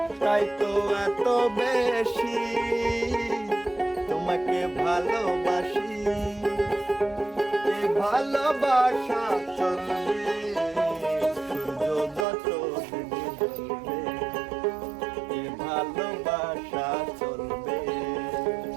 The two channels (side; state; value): left; drops out; at 12.2 s